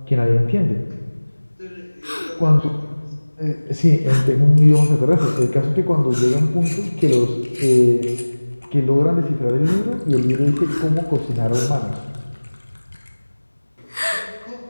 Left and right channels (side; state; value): both; inverted; correlation -1.00